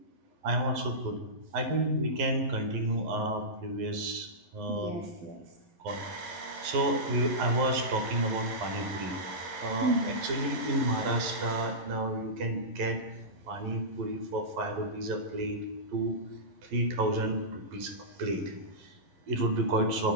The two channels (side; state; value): left; late; 11 ms